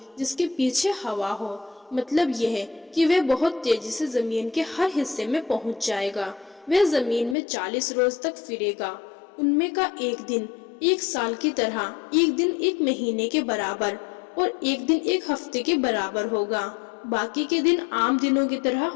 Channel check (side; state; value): right; drops out; at 7.4 s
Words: جس کے پیچھے ہوا ہو۔ مطلب یہ ہے کہ وہ بہت تیزی سے زمین کے ہر حصے میں پہنچ جائے گا۔ وہ زمین میں 40 روز تک پھرے گا، ان میں کا ایک دن 1 سال کی طرح، ایک دن 1 مہینے کے برابر اور ایک دن 1 ہفتے کے برابر ہوگا۔ باقی کے دن عام دنوں کی طرح